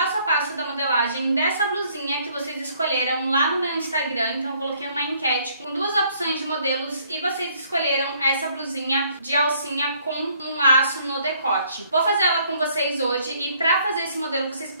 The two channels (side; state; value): both; inverted; correlation -0.64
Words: a passo da modelagem dessa blusinha que vocês escolheram lá no meu Instagram. Então eu coloquei uma enquete com duas opções de modelos e vocês escolheram essa blusinha de alcinha com um laço no decote. Vou fazer ela com vocês hoje e pra fazer esse modelo vocês